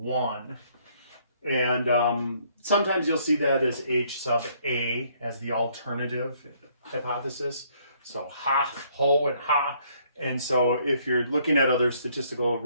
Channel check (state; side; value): inverted; both; correlation -0.66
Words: And sometimes you'll see that as H sub A as the alternative hypothesis. So ha, ho, and ha. And so if you're looking at other statistical